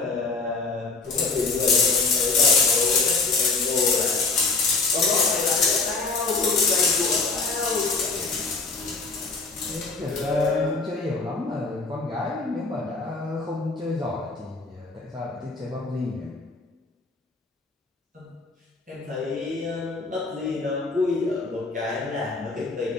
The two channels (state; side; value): quieter; right; 4.0 dB